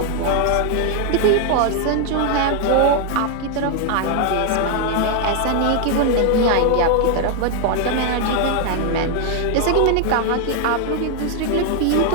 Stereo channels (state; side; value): different; both; correlation 0.00